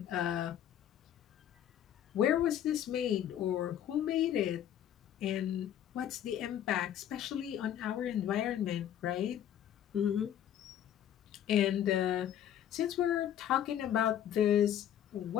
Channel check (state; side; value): quieter; right; 10.5 dB